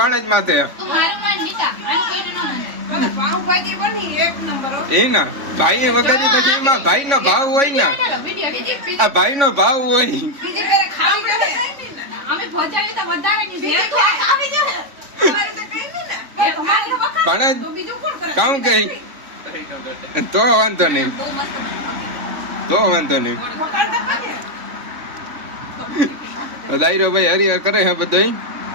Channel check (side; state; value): left; late; 3.5 ms